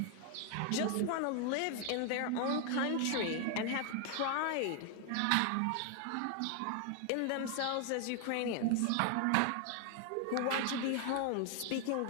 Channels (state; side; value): different; both; correlation 0.00